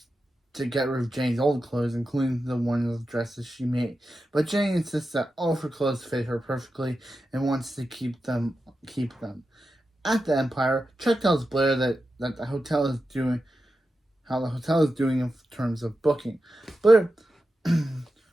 to get rid of Jenny's old clothes, including the ones of dresses she made. But Jenny insists that all of her clothes fit her perfectly and wants to keep them. At the Empire, Chuck tells Blair that the hotel is doing in terms of booking. Blair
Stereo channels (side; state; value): both; normal; correlation 0.91